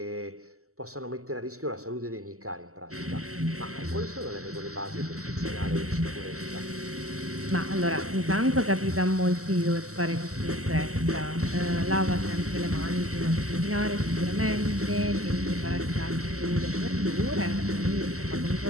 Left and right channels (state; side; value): late; left; 0.64 ms